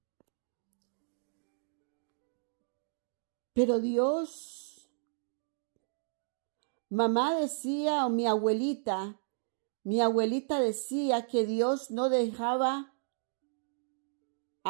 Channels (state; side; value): silent; left; digital silence